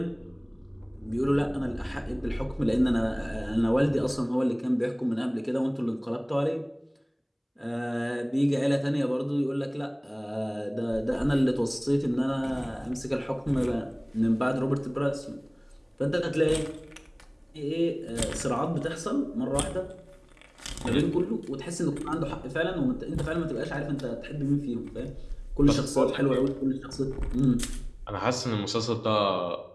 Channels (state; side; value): identical; both; correlation 1.00